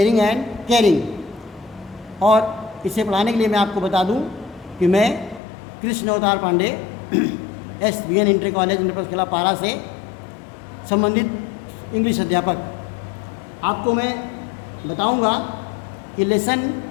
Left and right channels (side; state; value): right; drops out; at 5.4 s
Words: एंड केयरिंग। और इसे पढ़ाने के लिए मैं आपको बता दूँ कि मैं कृष्ण अवतार पांडे SBN इंटर कॉलेज इंटरकला पारा से संबंधित इंग्लिश अध्यापक। आपको मैं बताऊंगा कि लेसन